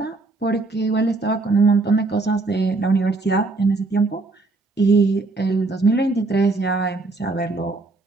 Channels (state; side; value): quieter; left; 3.4 dB